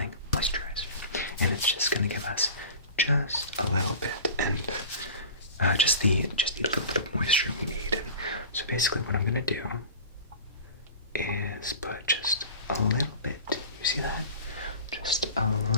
moisturizer. And it's just gonna give us just a little bit, and just the little bit of moisture we need. And so basically what I'm gonna do is put just a little bit, you see that? Just a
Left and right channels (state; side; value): inverted; both; correlation -0.37